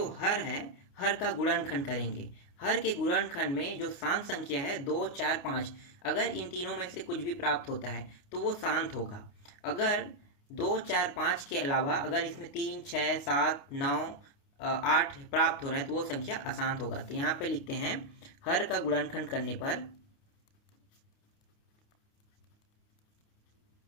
हर है, हर का गुणनखंड करेंगे। हर के गुणनखंड में जो शांत संख्या है 2 4 5, अगर इन तीनों में से कुछ भी प्राप्त होता है तो वो शांत होगा। अगर 2 4 5 के अलावा अगर इसमें 3 6 7 9 8 प्राप्त हो रहा है तो वो संख्या अशांत होगा। तो यहाँ पे लिखते हैं हर का गुणनखंड करने पर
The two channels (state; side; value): late; right; 29 ms